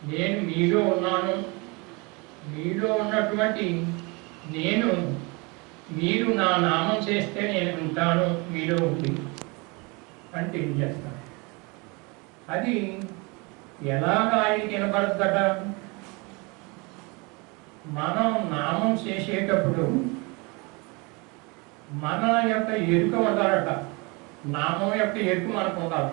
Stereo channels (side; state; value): left; quieter; 28.2 dB